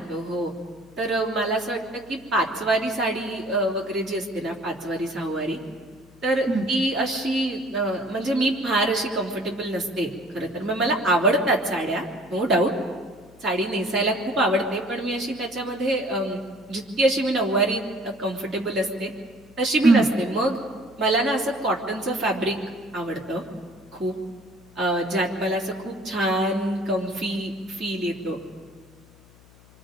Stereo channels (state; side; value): noise; left; hum, 25 dB below the sound